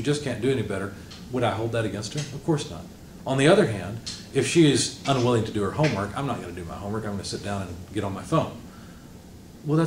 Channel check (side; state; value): both; identical; correlation 1.00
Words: just can't do any better, would I hold that against her? Of course not. On the other hand, if she is unwilling to do her homework, I'm not going to do my homework. I'm going to sit down and get on my phone. Well,